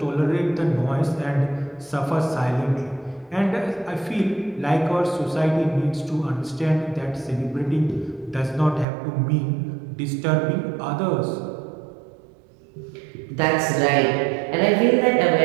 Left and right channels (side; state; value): left; drops out; at 8.8 s